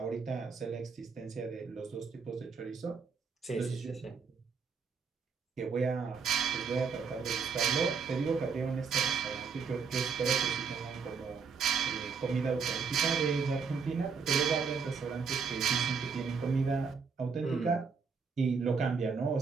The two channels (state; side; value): quieter; left; 5.6 dB